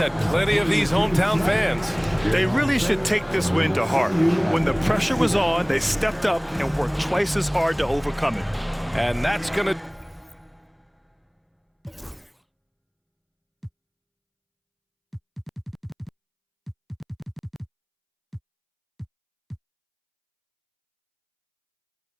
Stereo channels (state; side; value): identical; both; correlation 1.00